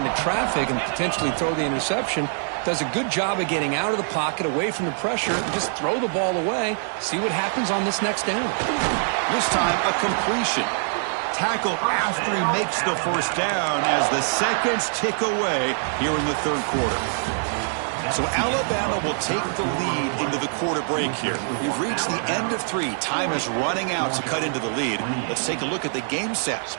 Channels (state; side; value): silent; left; 58 dB below the other